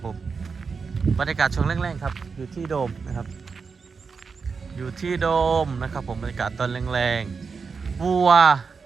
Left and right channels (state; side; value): quieter; left; 5.2 dB